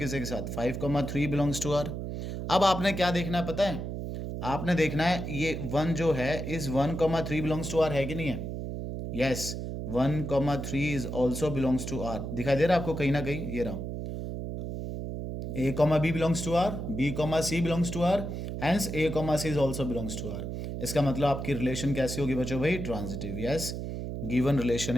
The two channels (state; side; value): noise; right; hum, 5 dB below the sound